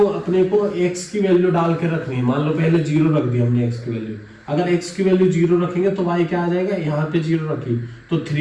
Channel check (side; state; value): both; identical; correlation 1.00